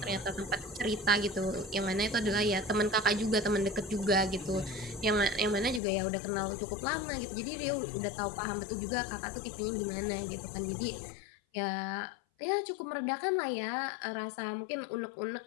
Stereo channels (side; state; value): right; drops out; at 5.8 s